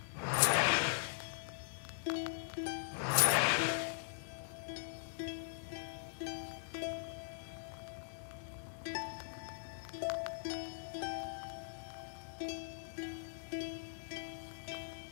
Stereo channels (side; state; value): right; silent; 50 dB below the other